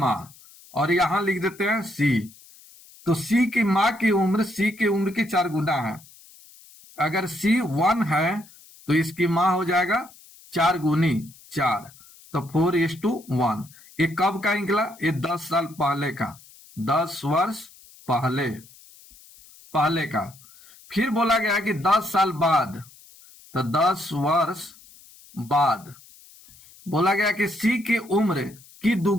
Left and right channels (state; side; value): noise; left; hiss, 24 dB below the sound